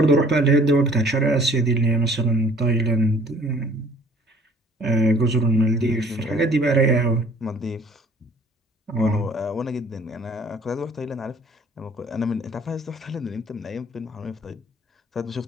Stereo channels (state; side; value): normal; both; correlation 0.55